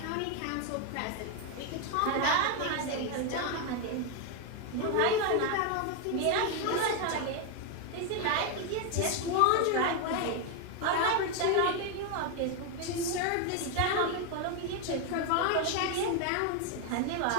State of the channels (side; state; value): both; different; correlation 0.01